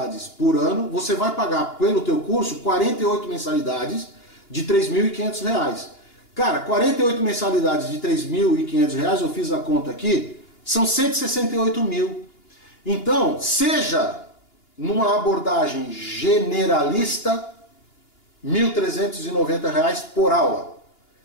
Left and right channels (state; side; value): late; right; 2.9 ms